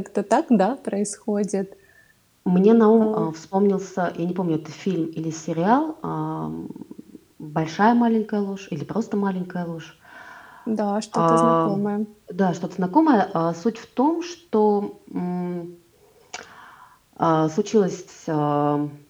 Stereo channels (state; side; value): identical; both; correlation 1.00